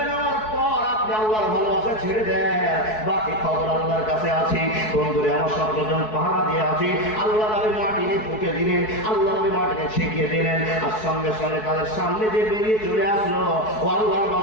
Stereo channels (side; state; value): right; late; 4.6 ms